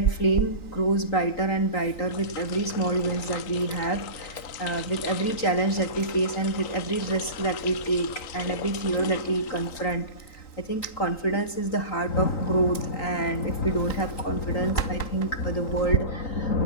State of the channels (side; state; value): right; late; 3.9 ms